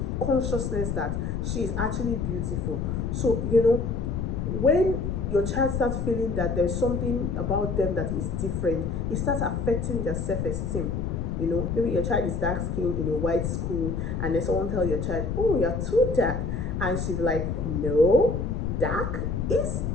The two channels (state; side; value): noise; left; rumble, 2 dB below the sound